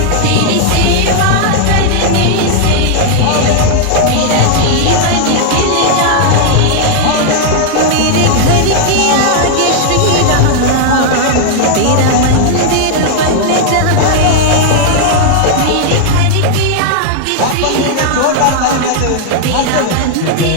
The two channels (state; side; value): different; both; correlation 0.00